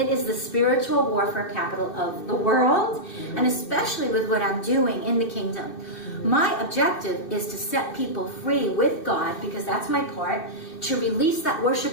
is the spiritual warfare capital of the world, and especially with what I'm doing in the kingdom. My objective is to set people free with God, because that's my part, to release that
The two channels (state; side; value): late; right; 2.6 ms